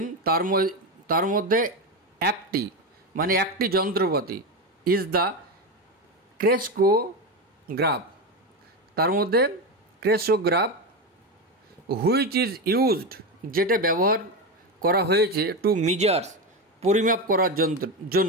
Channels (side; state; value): both; normal; correlation 0.15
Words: তার মধ্যে একটি মানে একটি যন্ত্রপাতি, ইজ দ্য ক্রেস্কোগ্রাফ, তার মধ্যে ক্রেস্কোগ্রাফ, হুইচ ইজ ইউজড, যেটা ব্যবহার করা হয়েছে টু মিজার্স, পরিমাপ করার